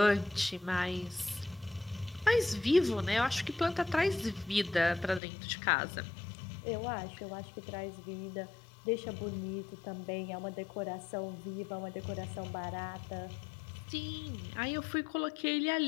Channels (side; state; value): right; drops out; at 5.2 s